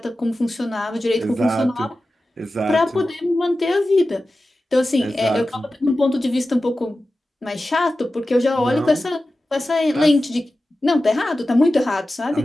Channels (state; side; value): normal; both; correlation 0.94